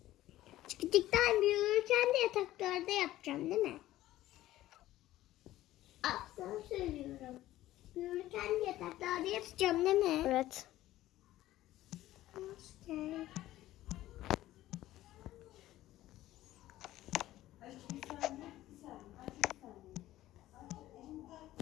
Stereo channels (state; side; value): quieter; right; 15.0 dB